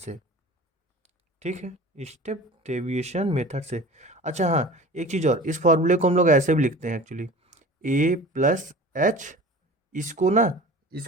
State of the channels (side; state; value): both; normal; correlation 0.40